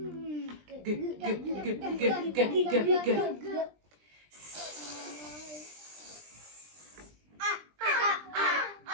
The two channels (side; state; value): left; late; 20 ms